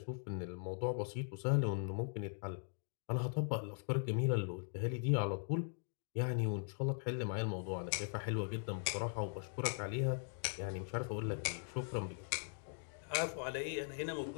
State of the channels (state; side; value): silent; right; digital silence